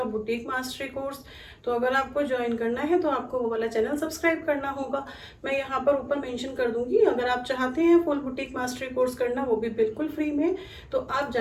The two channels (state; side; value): identical; both; correlation 1.00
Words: बुटीक मास्टरी कोर्स। तो अगर आपको ज्वाइन करना है तो आपको वो वाला चैनल सब्सक्राइब करना होगा। मैं यहाँ पर ऊपर मेंशन कर दूंगी। अगर आप चाहते हैं फुल बुटीक मास्टरी कोर्स करना, वो भी बिल्कुल फ्री में, तो आप